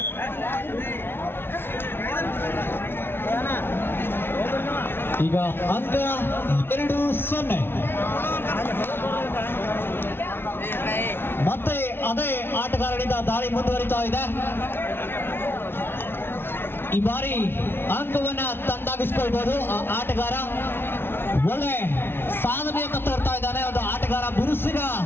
ಈಗ ಅಂಕ 2-0. ಮತ್ತೆ ಅದೇ ಆಟಗಾರನಿಂದ ದಾಳಿ ಮುಂದುವರಿತಾ ಇದೆ. ಈ ಬಾರಿ ಅಂಕವನ್ನ ತಂದಾಗಿಸ್ಕೊಳ್ಬಹುದು. ಆ ಆಟಗಾರ ಒಳ್ಳೆ ಸಾಧನೆಯನ್ನು ತೋರ್ತಾ ಇದ್ದಾನೆ. ಒಂದು ಆಟಗಾರ, ಬಿರುಸಿನ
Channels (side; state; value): right; late; 0.11 ms